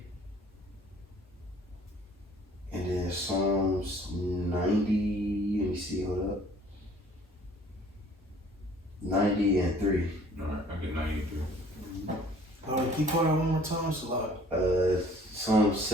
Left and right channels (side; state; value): both; normal; correlation 0.55